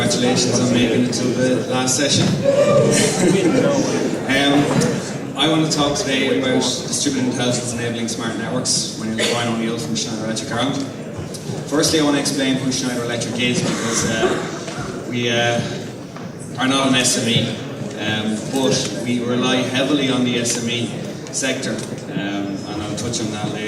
on making it to the last session. I want to talk today about distributed intelligence enabling smart networks. My name is Brian O'Neill from Schneider Electric Ireland. Firstly, I want to explain who Schneider Electric is, because we are not an SME, but we rely heavily on the SME sector, and I'll touch on that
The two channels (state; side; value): identical; both; correlation 1.00